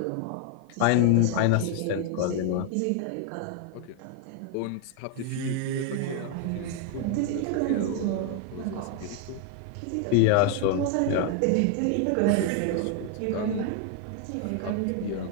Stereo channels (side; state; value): both; different; correlation 0.00